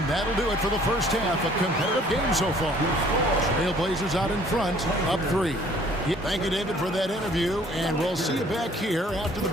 that'll do it for the first half. A competitive game so far. Trailblazers out in front, up 3. Thank you, David, for that interview. And we'll see you back here after the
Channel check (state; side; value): normal; both; correlation 0.57